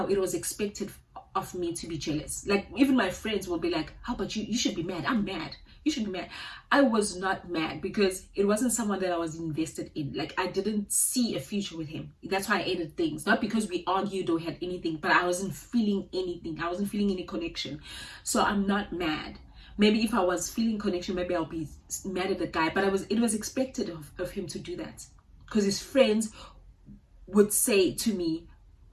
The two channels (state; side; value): identical; both; correlation 1.00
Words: it was expected of me to be jealous. Like, even my friends will be like, how about you? You should be mad. I'm mad. You should be mad. I was not mad because it wasn't someone that I was invested in. Like, I didn't see a future with him. That's why I ended things. Not because we argued or had anything, but I wasn't feeling anything. I wasn't feeling any connection. So I'm not mad. Maybe if I was feeling connection, maybe I'll be mad at the guy. But it was expected of him to do that. Because his friends would say to me,